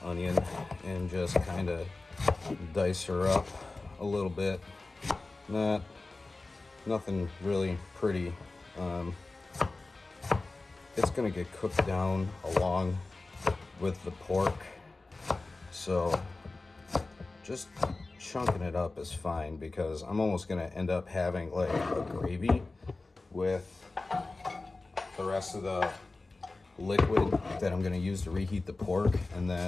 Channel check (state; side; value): quieter; right; 3.3 dB